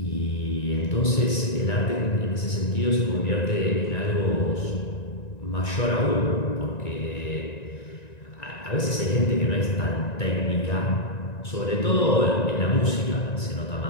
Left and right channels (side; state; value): right; late; 1.9 ms